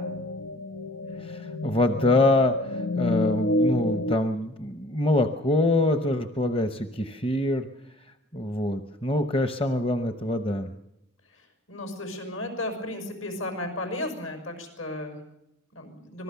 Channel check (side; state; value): both; normal; correlation 0.51